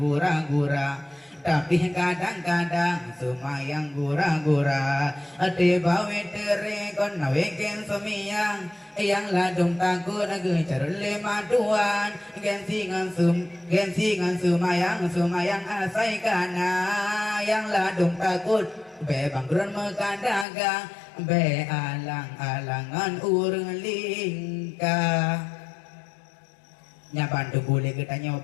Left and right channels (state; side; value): drops out; right; at 20.5 s